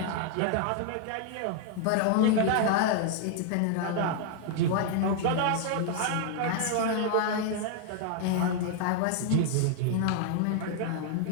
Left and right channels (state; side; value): different; both; correlation 0.00